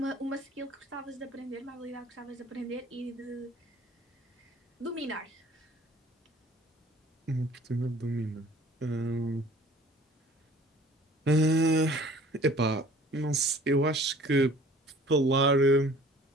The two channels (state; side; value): normal; both; correlation 0.50